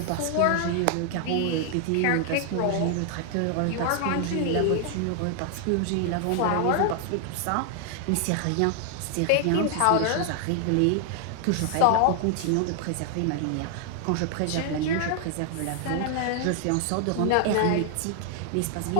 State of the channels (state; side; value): different; both; correlation 0.00